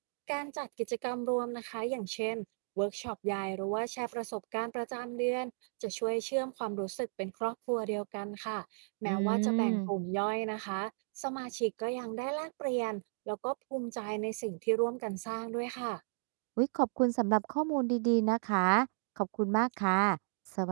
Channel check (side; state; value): left; silent; digital silence